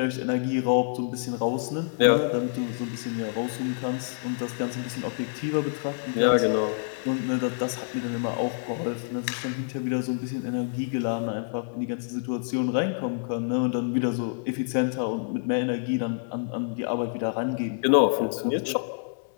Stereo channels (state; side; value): silent; right; digital silence